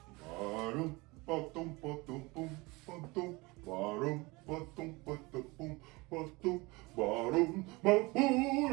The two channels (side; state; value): left; quieter; 24.3 dB